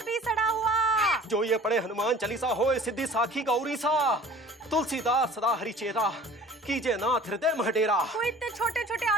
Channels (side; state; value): both; normal; correlation 0.46